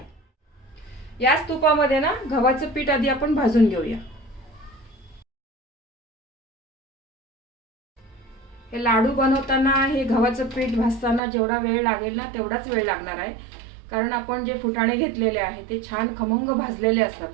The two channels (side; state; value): left; drops out; at 11.2 s